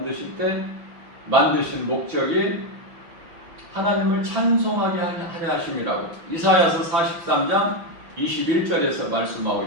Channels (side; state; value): left; late; 5.9 ms